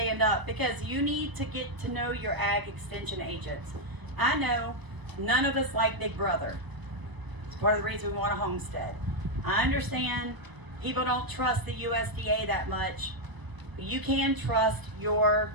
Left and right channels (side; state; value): left; late; 1.0 ms